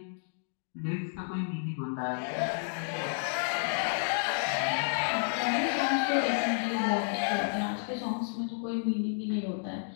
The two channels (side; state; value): right; silent; digital silence